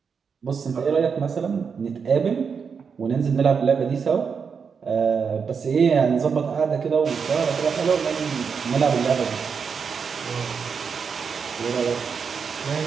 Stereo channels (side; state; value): left; quieter; 6.1 dB